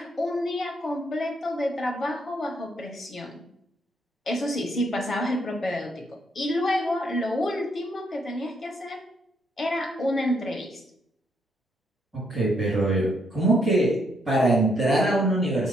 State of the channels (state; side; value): normal; both; correlation 0.74